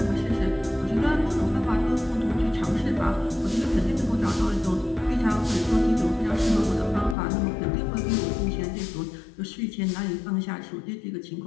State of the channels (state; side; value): drops out; right; at 7.2 s